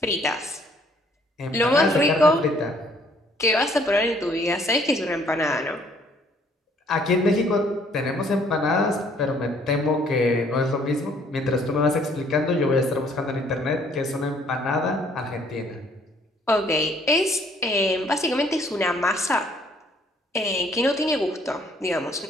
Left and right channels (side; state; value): both; normal; correlation 0.62